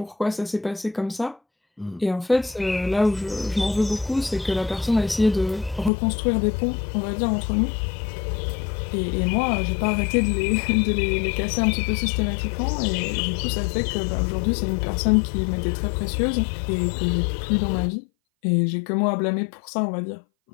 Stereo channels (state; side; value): drops out; right; at 5.9 s